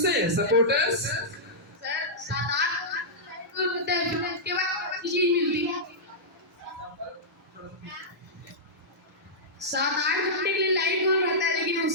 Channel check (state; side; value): normal; both; correlation -0.12